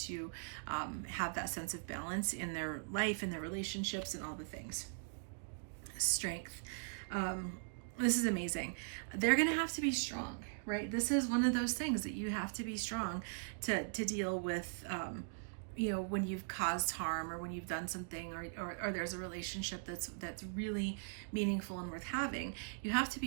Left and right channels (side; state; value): left; silent; digital silence